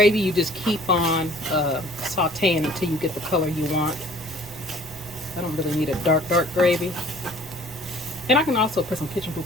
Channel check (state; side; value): noise; right; rumble, 21 dB below the sound